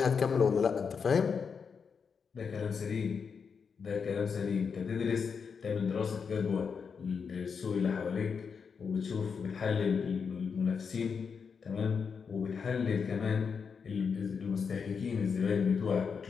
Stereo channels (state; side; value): quieter; right; 6.0 dB